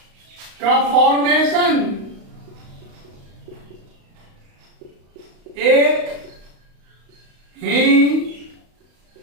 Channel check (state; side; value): late; left; 35 ms